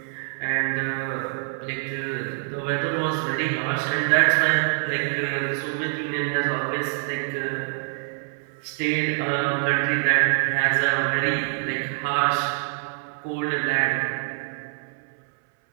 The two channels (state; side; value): silent; left; 62 dB below the other